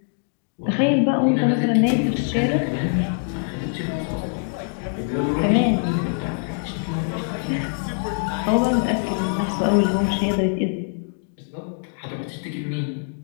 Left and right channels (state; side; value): silent; right; 63 dB below the other